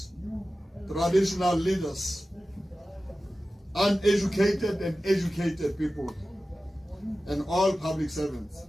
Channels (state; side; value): normal; both; correlation 0.95